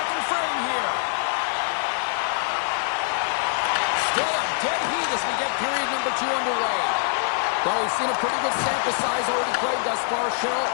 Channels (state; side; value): silent; right; 62 dB below the other